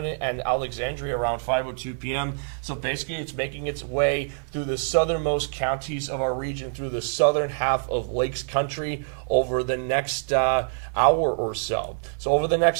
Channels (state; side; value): silent; left; digital silence